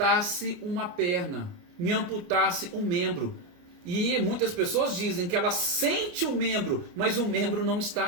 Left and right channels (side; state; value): left; late; 29 ms